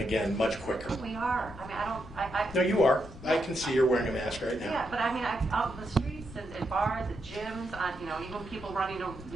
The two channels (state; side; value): noise; left; rumble, 15 dB below the sound